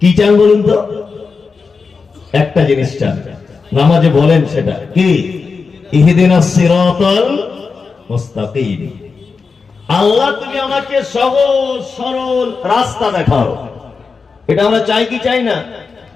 চান বলুন তো? একটা জিনিস চান, নামাজে বলেন সেটা কি? ইহদিনাস সিরাতাল মুস্তাকিম। আল্লাহ তুমি আমাকে সহজ সরল রাস্তা দেখাও। এটা আমরা চাই কি চাই না?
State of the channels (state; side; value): quieter; right; 4.9 dB